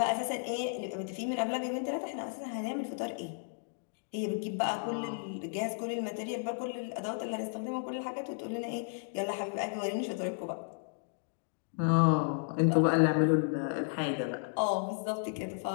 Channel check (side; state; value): right; silent; digital silence